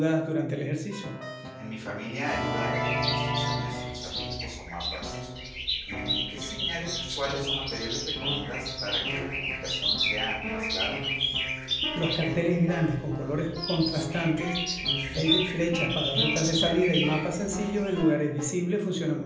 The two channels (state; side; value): identical; both; correlation 1.00